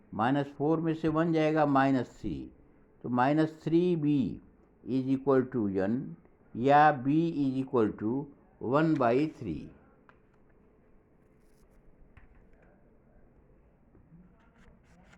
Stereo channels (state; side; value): identical; both; correlation 1.00